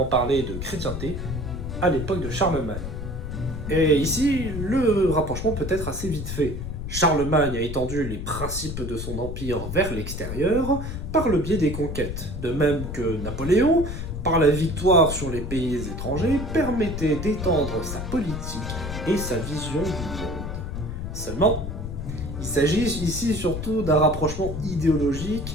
parler de chrétienté à l'époque de Charlemagne. Et ici, le rapprochement peut être assez vite fait. Charlemagne a étendu les principes de son empire vers l'extérieur par le biais des conquêtes, de même que Napoléon, par la victoire sur les pays étrangers, permettait d'étendre sa politique et sa vision du monde. Seulement, il s'agit ici surtout d'un rapprochement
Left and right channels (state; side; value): noise; left; rumble, 6 dB below the sound